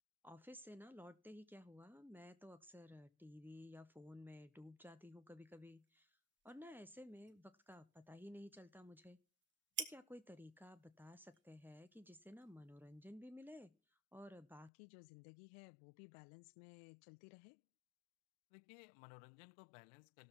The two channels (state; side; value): drops out; right; at 14.7 s